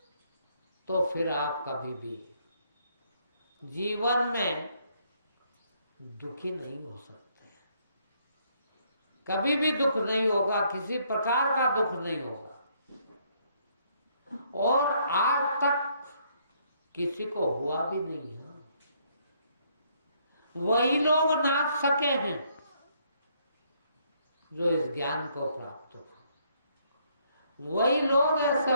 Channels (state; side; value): inverted; both; correlation -0.69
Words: तो फिर आप कभी भी जीवन में दुखी नहीं हो सकते। कभी भी दुख नहीं होगा, किसी प्रकार का दुख नहीं होगा। और आज तक किसी को हुआ भी नहीं है। वही लोग नाच सके हैं जो इस ज्ञान को प्राप्त हो। वही लोग ऐसे